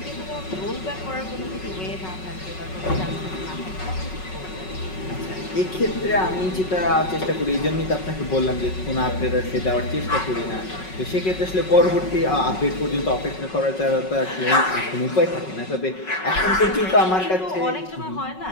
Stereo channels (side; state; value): right; late; 5.4 ms